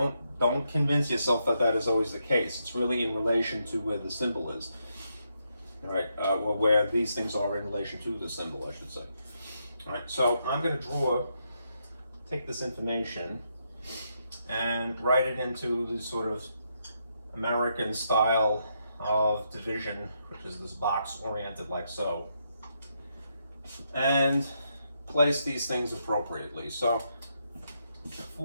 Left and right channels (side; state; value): both; inverted; correlation -0.80